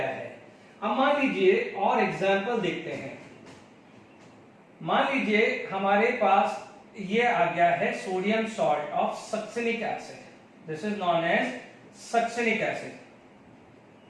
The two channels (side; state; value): both; identical; correlation 1.00